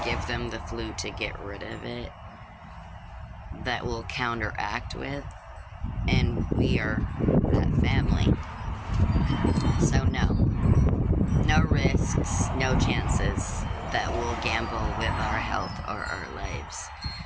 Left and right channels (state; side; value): identical; both; correlation 1.00